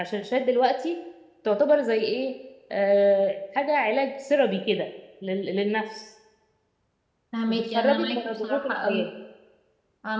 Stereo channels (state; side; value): identical; both; correlation 1.00